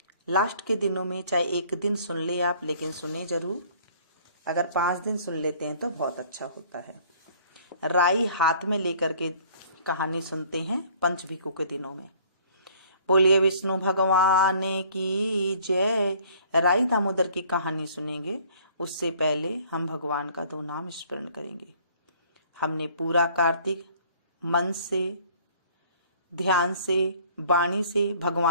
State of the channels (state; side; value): inverted; both; correlation -0.55